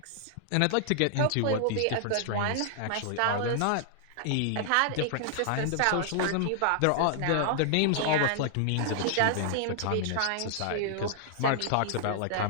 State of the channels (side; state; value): both; different; correlation -0.01